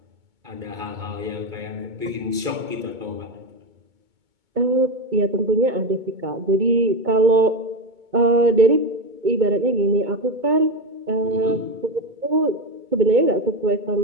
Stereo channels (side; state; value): left; late; 2.2 ms